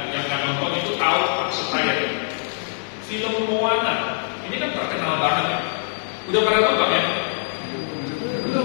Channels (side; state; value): right; silent; 63 dB below the other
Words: nonton itu tahu maksud saya. Film Moana ini kan terkenal banget. Udah pada nonton ya?